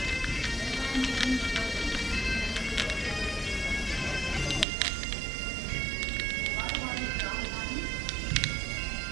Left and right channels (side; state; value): left; drops out; at 4.7 s